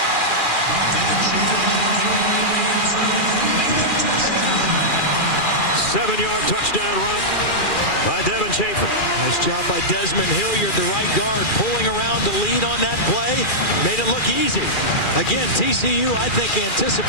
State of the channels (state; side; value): late; right; 2.4 ms